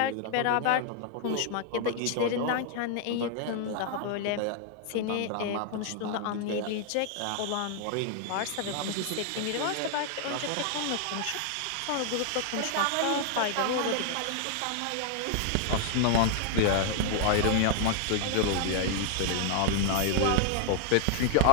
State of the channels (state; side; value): different; both; correlation 0.00